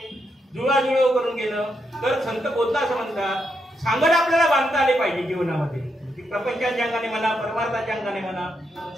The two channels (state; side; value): normal; both; correlation 0.81